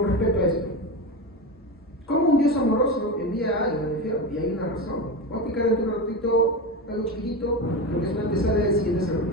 respecto a esto. ¿Cómo un Dios amoroso envía algo al infierno? Y hay una razón. Voy a explicar en un ratito algo chiquitito, lo que es una antesala del siguiente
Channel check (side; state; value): both; normal; correlation 0.20